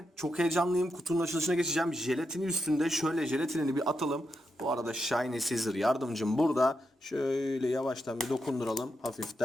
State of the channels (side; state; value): both; normal; correlation 0.85